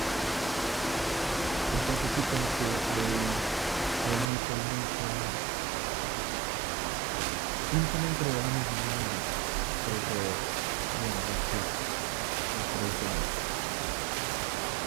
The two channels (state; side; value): drops out; left; at 4.2 s